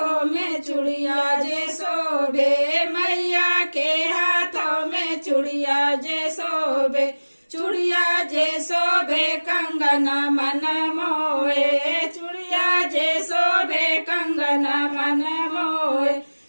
में चूड़िया जे शोभे, मैया के हाथों में चूड़िया जे शोभे, चूड़िया जे शोभे कंगना मन मोहे, चूड़िया जे शोभे कंगना मन मोहे।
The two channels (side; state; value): both; inverted; correlation -1.00